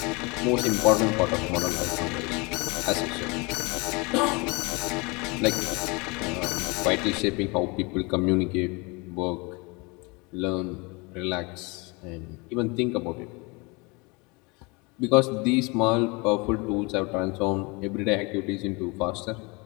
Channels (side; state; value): right; quieter; 27.5 dB